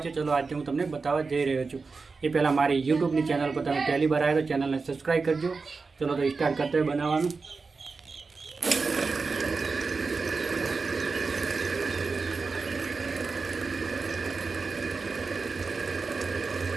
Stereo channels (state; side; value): quieter; left; 4.4 dB